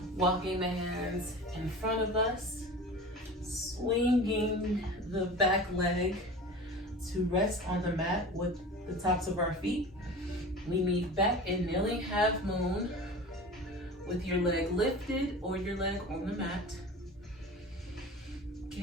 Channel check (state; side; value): normal; both; correlation 0.36